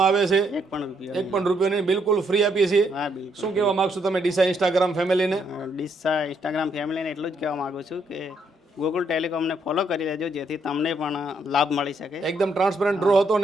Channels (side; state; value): both; normal; correlation 0.73